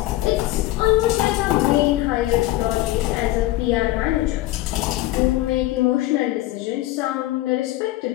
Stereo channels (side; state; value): right; quieter; 16.5 dB